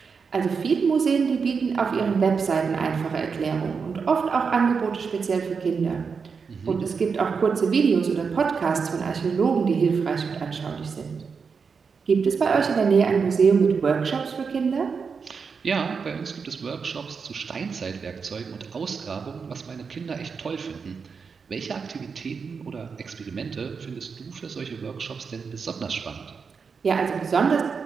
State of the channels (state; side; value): quieter; left; 5.6 dB